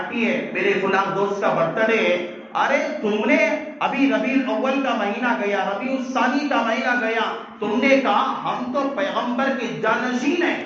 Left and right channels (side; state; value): both; identical; correlation 1.00